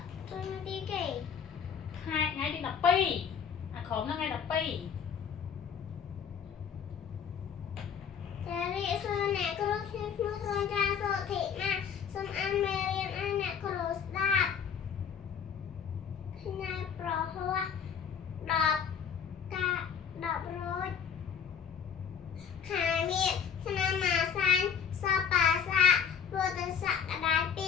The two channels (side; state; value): right; quieter; 7.4 dB